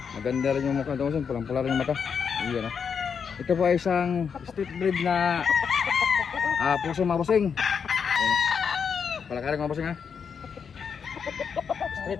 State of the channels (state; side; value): quieter; right; 6.6 dB